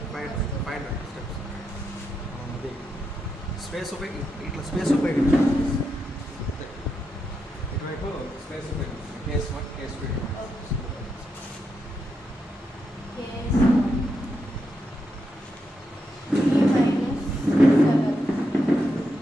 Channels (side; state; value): both; normal; correlation 0.84